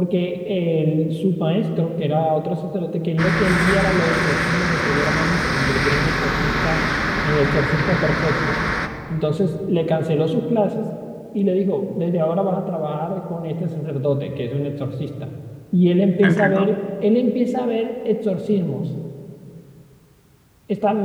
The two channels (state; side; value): identical; both; correlation 1.00